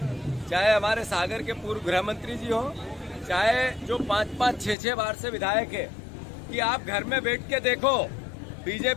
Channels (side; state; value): right; drops out; at 4.8 s